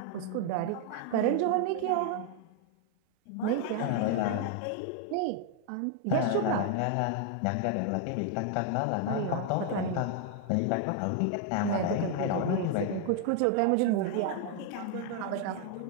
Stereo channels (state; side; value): different; both; correlation 0.00